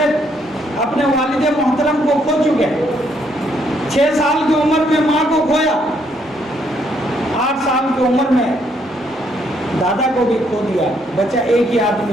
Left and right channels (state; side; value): normal; both; correlation 0.71